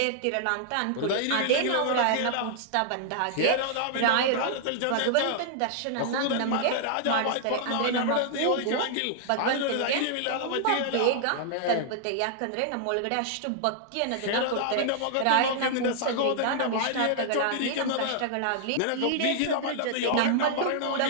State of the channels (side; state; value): both; different; correlation -0.01